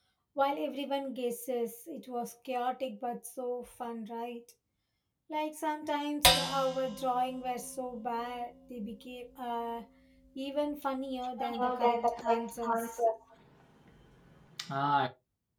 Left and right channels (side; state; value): both; identical; correlation 1.00